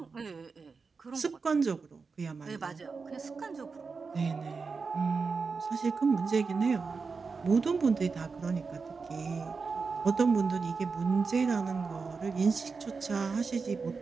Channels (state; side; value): quieter; left; 4.8 dB